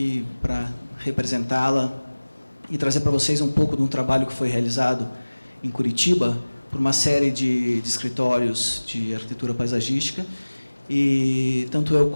para representá-la e trazer para vocês um pouco de um trabalho que foi realizado em Curitiba por uma série de escritórios de arquitetura paisagística, e tanto eu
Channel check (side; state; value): both; inverted; correlation -1.00